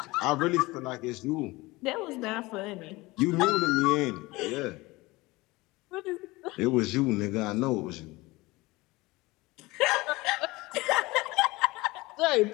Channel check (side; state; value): right; quieter; 21.5 dB